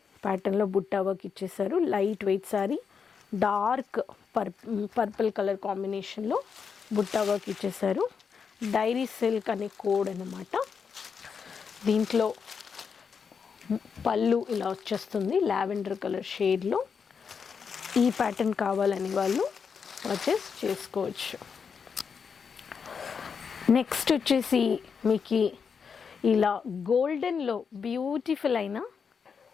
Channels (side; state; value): right; quieter; 6.2 dB